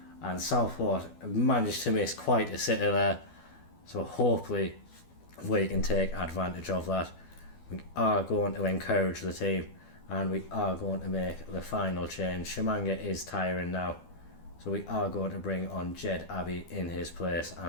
and Southport managed to miss quite a sitter there, so hopefully we can take advantage of that. We are going to encourage the team, and we are going to make the final change. Chimanga is tiring now, so we are going to bring on Jed Abbey in his place,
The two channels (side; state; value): right; late; 12 ms